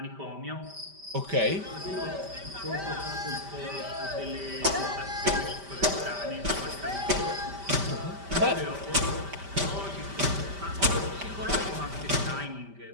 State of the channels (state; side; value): late; left; 5.1 ms